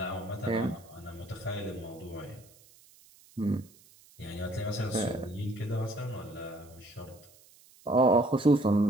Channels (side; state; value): right; noise; hiss, 26 dB below the sound